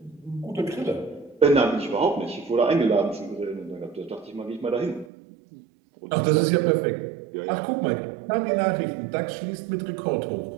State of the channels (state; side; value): drops out; left; at 5.1 s